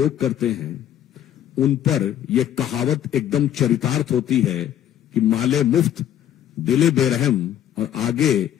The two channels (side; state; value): right; quieter; 10.9 dB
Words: करते हैं, उन पर यह कहावत एकदम चरितार्थ होती है कि माले मुफ्त दिले बेरहम। और आगे